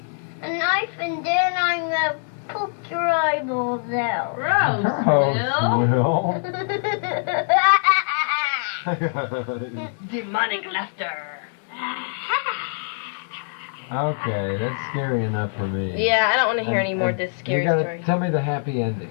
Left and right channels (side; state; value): right; silent; 63 dB below the other